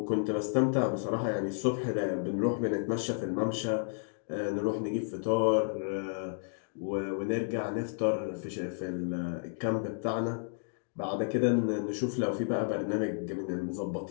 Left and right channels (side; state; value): right; silent; digital silence